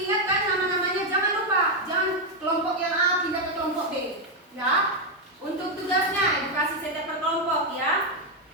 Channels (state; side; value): normal; both; correlation 0.02